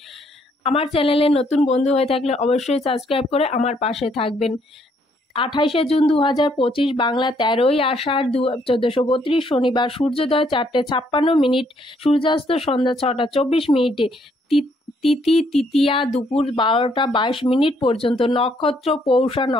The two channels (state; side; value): normal; both; correlation 0.69